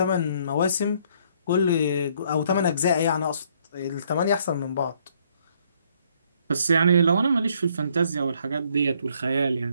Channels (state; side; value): inverted; both; correlation -0.66